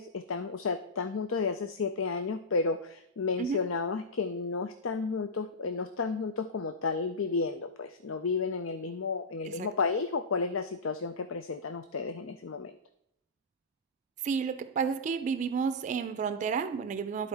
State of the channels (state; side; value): normal; both; correlation -0.13